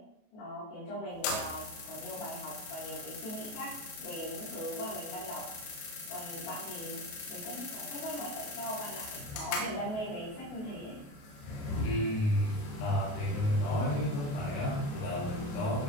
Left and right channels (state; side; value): late; right; 28 ms